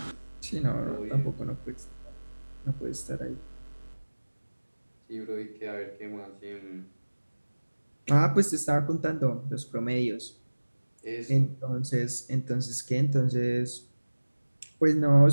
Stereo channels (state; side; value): inverted; both; correlation -1.00